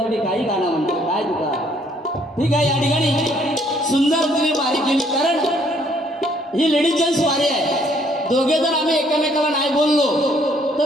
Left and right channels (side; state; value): both; normal; correlation 0.65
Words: काही गाणं म्हणतो काय तुका. ठीक आहे या ठिकाणी सुंदर तुम्ही वारी केली कारण ही लेडीज जेंट्स वारी आहे. दोघे जर आम्ही एकमेकाला नाही बोललो